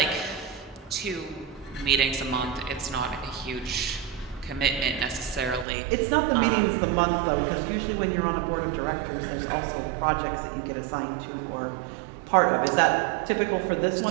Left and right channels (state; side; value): drops out; left; at 5.7 s